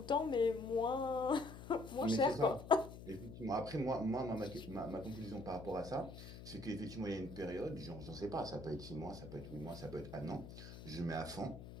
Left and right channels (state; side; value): noise; left; hum, 13 dB below the sound